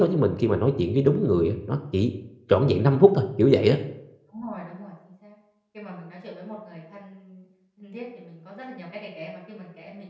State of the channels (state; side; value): identical; both; correlation 1.00